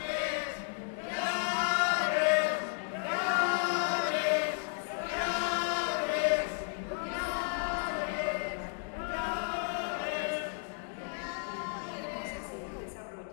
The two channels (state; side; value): silent; right; 56 dB below the other